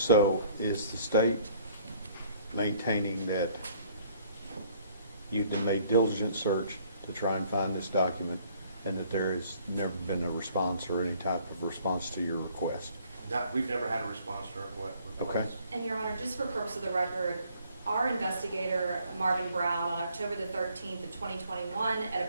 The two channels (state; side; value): inverted; both; correlation -0.60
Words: is the state maintaining that you've made diligent search to try and find this document and that there has never been a response or any type of response to your request? We've never had a response to our request. Okay. And Your Honor, just for purpose of the record, our investigator, Marvin Brown, on October the 13th of 2021 at